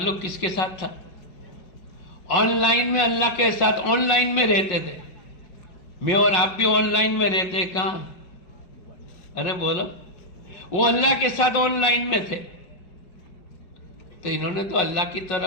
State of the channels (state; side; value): late; right; 5.5 ms